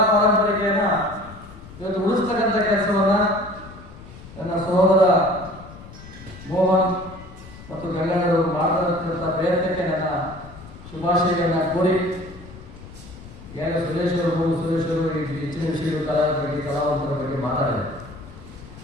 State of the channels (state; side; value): noise; left; rumble, 17 dB below the sound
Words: ಪಾರಂಪರಿಕೆಯನ್ನ ಇವತ್ತು ಉಳಿಸ್ತಕ್ಕಂಥ ಕೆಲಸವನ್ನ ನನ್ನ ಸಹೋದರ ಮೋಹನ್ ಮತ್ತು ಗಂಗಣ್ಣರು ಮಾಡತಕ್ಕಂಥ ಪ್ರಯತ್ನಕ್ಕೆ ನನ್ನ ಶುಭಾಶಯಗಳನ್ನ ಕೋರಿ, ಈಗ ಸುರೇಶ್ ಅವರು ಹೆಚ್ಚಿನ ವಿಷಯಗಳು ಕಲಾವಿದರ ಬಗ್ಗೆ ಕಲಾವಂತರ ಬಗ್ಗೆ ಮಾತಾಡಿದ್ದಾರೆ.